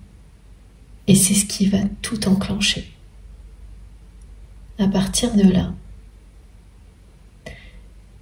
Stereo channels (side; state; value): both; identical; correlation 1.00